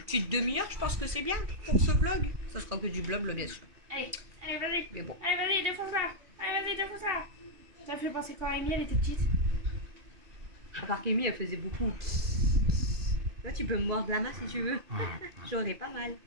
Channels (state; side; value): late; left; 2.6 ms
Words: petite demi-heure, je pense que c'est bien pour ce vlog. Ça sera que du blabla bien sûr. Allez, allez, vas-y. Mais bon. Allez, vas-y, défonce-la. Allez, vas-y, défonce-la. Ça fait penser quoi à Amy, elle était petite. À part qu'Amy, elle faisait beaucoup. Toi, tu peux me mordre la main si tu veux. J'aurais pas mal.